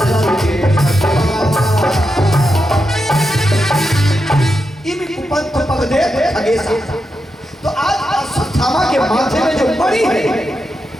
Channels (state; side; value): normal; both; correlation 0.87